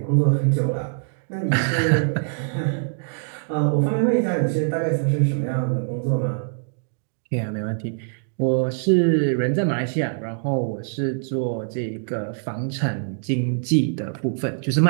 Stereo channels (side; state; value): left; silent; digital silence